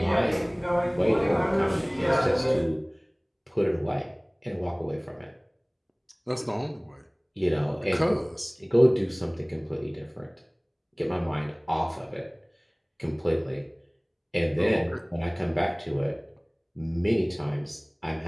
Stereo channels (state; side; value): identical; both; correlation 1.00